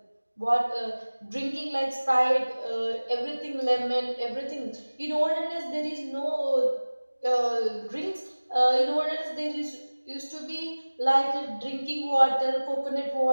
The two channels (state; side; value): inverted; both; correlation -1.00